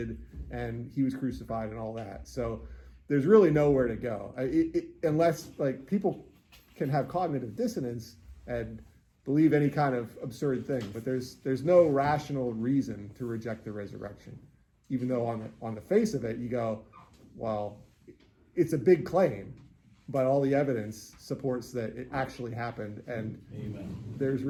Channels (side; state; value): both; identical; correlation 1.00